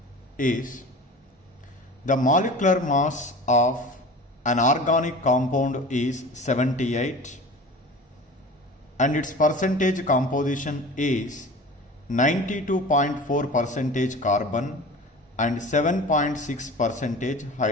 is the molecular mass of an organic compound is 78 and its percentage composition is 92.4 percentage carbon and 7.6 percentage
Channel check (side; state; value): both; normal; correlation 0.38